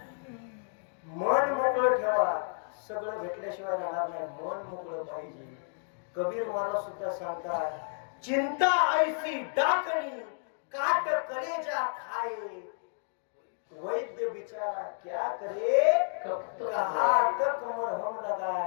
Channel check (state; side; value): silent; right; digital silence